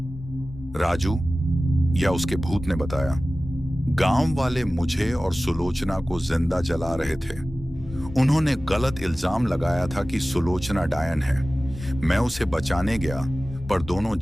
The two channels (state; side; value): normal; both; correlation 0.96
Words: राजू या उसके भूत ने बताया, गांव वाले मुझे और सुलोचना को जिंदा जला रहे थे। उन्होंने गलत इल्जाम लगाया था कि सुलोचना डायन है। मैं उसे बचाने गया, पर दोनों